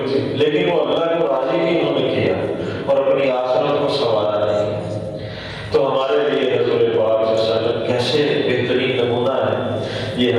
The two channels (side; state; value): both; identical; correlation 1.00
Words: تھی، لیکن وہ اللہ کو راضی ہی انہوں نے کیا اور اپنی آخرت کو سنوارا نہیں۔ تو ہمارے لیے حضور پاک صلی اللہ علیہ وسلم کیسے بہترین نمونہ ہے، یہ